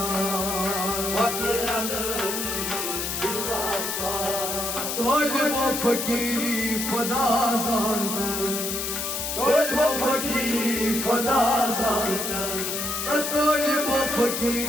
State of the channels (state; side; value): noise; left; hiss, 3 dB below the sound